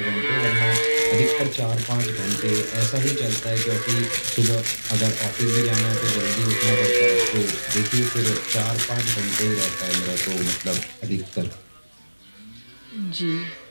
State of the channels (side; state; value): both; inverted; correlation -1.00